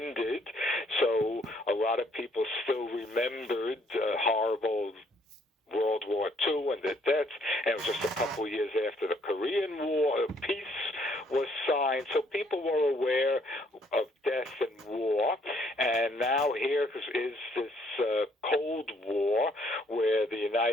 So a lot of people still remembered horrible World War II and the deaths, and it was just a couple of years after the Korean War, peace was signed, so people were aware of death and war, and now here is this Cold War where the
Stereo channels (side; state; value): both; normal; correlation 0.66